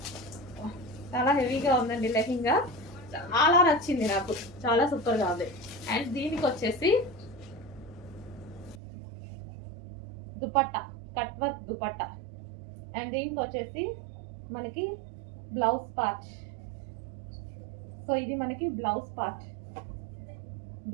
చాలా హెవీగా ఉందండి లెహెంగా, చాలా నచ్చింది నాకు, చాలా సూపర్గా ఉంది. అండ్ దీనికి వచ్చేసి dupatta, cut work dupatta. And దీనికి వచ్చేసి మనకి బ్లౌజ్ పార్ట్. సో ఇది మనకి బ్లౌజ్ పార్ట్,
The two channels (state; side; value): drops out; left; at 8.8 s